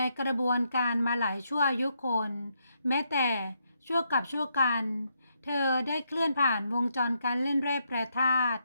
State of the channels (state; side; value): inverted; both; correlation -0.78